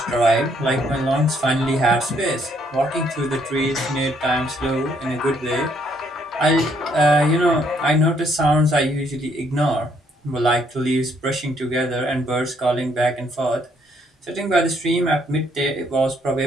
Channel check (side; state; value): both; normal; correlation 0.69